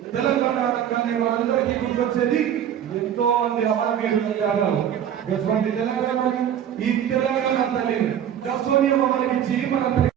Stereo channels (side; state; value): left; quieter; 9.8 dB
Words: తెలంగాణ అనగానే మనందరికీ గుర్తొచ్చేది ఎంతో మంది అమరవీరుల త్యాగాలు. తెలంగాణని ఈ తెలంగాణ తల్లిని దశోనియమ మనకిచ్చి మన